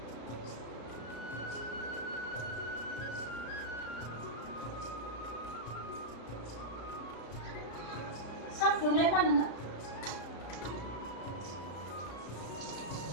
सा फुदुंलाय मा नोङो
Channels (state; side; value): late; right; 34 ms